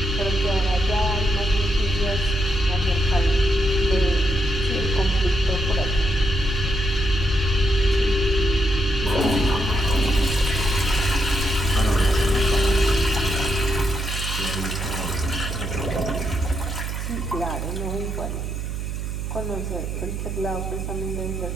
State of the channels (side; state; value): right; noise; hum, 4 dB below the sound